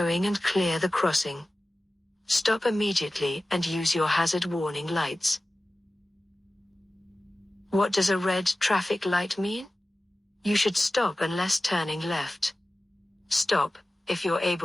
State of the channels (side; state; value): both; normal; correlation 0.96